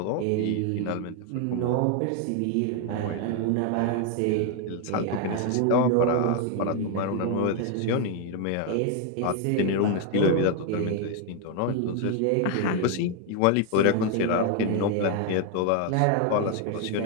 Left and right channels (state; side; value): different; both; correlation 0.01